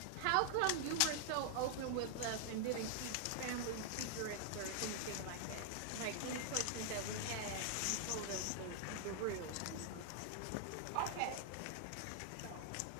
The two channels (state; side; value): different; both; correlation 0.00